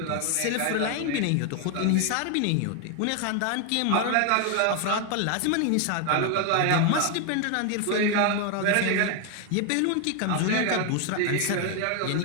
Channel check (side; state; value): both; different; correlation 0.01